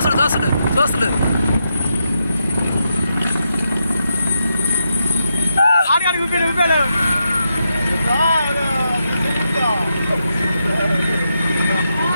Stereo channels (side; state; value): both; inverted; correlation -0.84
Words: చూస్తాడు చూస్తాడు. ఆడికి ఊపాడు ఊపాడు.